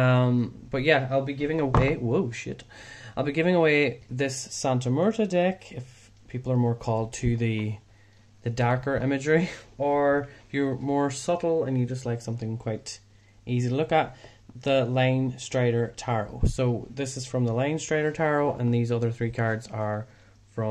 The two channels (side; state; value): both; identical; correlation 1.00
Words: yeah, I'll be giving away I'll be giving away this Santa Muerta deck if people are more called to the darker imagery, or if you're more subtle and you just like something quite easy to look at, the Line Strider Tarot. So this is from the Line Strider Tarot, and these other 3 cards are